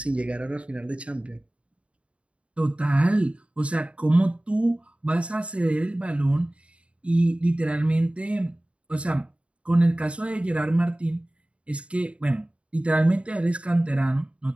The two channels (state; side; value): late; left; 0.061 ms